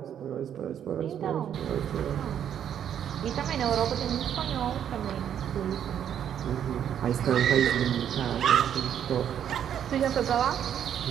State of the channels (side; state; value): left; quieter; 9.4 dB